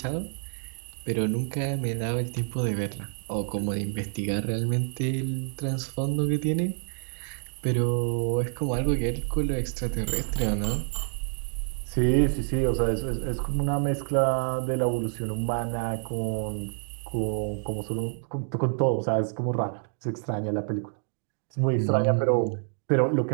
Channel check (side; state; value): left; silent; digital silence